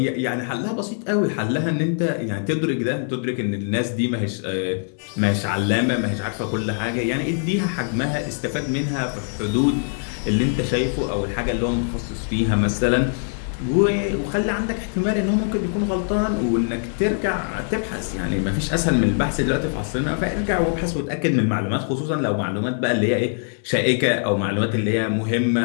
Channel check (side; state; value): right; silent; digital silence